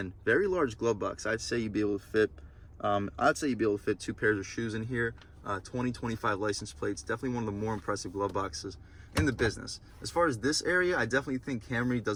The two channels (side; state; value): both; identical; correlation 1.00